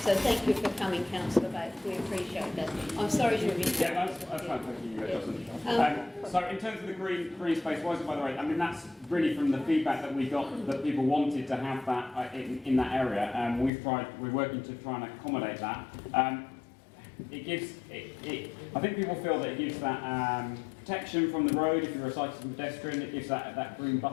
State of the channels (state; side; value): drops out; right; at 13.7 s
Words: So thank you for coming, Councillor Bates. We appreciate that. I'm sorry to have interrupted. Yeah, that's fine. Thank you, Jocelyn. So in terms of the green space, why is it by the road? I mean, that's really from the feedback that we got that people wanted to have that in that area. We're working to try and accommodate that. It gives, I think people feel that it gives that protection from the road if you're a cyclist and pedestrian. It gives that green